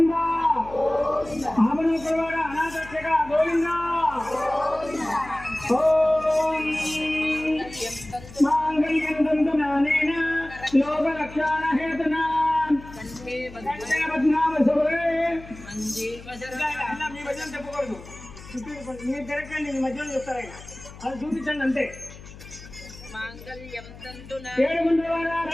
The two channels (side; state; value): left; noise; hum, 17 dB below the sound